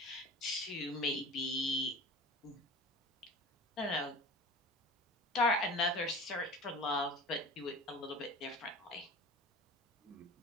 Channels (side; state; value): both; normal; correlation 0.38